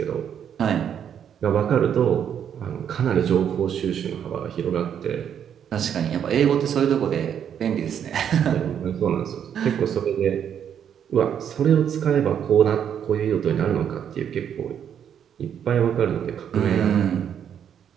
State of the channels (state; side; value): quieter; left; 8.7 dB